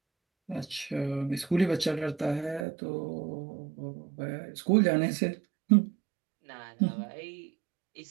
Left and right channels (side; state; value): left; drops out; at 2.7 s